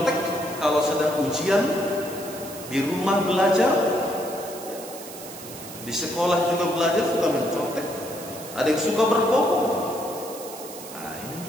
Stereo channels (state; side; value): noise; right; hiss, 14 dB below the sound